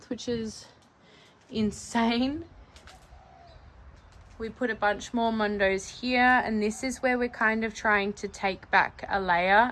which is insane. We put a bunch more mondos here, and this is where we're kind of trying to take back a layer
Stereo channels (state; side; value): identical; both; correlation 1.00